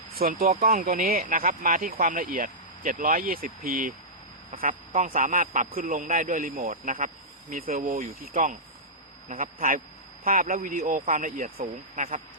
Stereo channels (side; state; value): both; normal; correlation -0.14